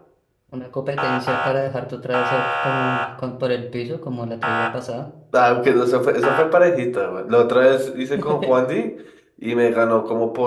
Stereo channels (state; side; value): identical; both; correlation 1.00